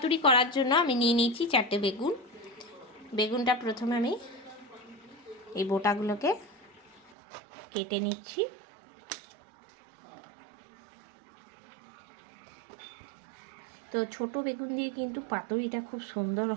করার জন্য আমি নিয়ে নিয়েছি 4টে বেগুন। বেগুনটা প্রথমে আমি এই বোটাগুলোকে কেটে নিচ্ছি। তো ছোট বেগুন দিয়ে কিন্তু পাতুরিটা খুব সুন্দর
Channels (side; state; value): left; drops out; at 7.2 s